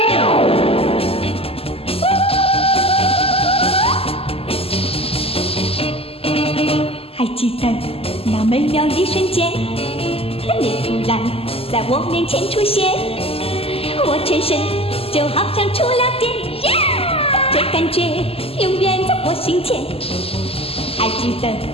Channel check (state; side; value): late; right; 0.28 ms